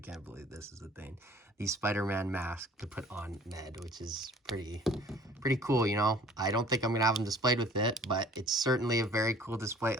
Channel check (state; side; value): normal; both; correlation 0.51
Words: believe this is a thing, the Spider-Man mask to put on Ned, which is pretty cool, you know. I don't think I'm gonna have him displayed with it, but it's certainly a very cool display.